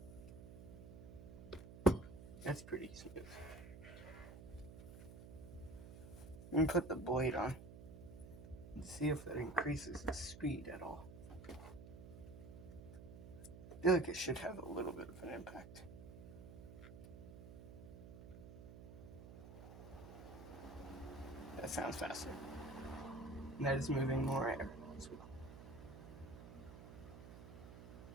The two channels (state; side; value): noise; right; hum, 13 dB below the sound